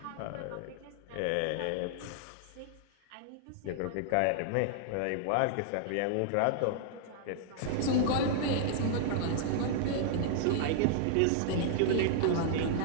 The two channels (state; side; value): different; both; correlation -0.01